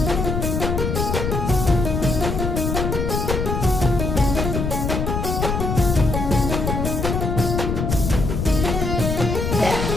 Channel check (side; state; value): left; noise; rumble, 1 dB below the sound